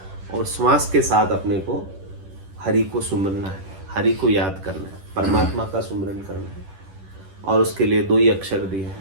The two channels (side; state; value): left; late; 10 ms